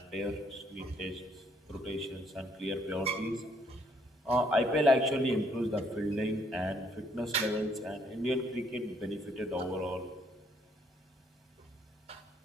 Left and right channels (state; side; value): normal; both; correlation 0.68